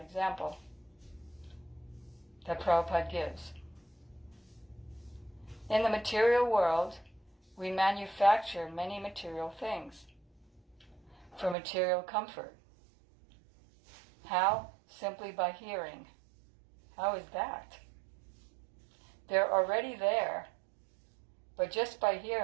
example that Prabhupada gives. In the material world, we manufacture many material things for material comfort. How? Simply by hearing. How is that? They're already there, but just by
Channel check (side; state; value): left; drops out; at 11.6 s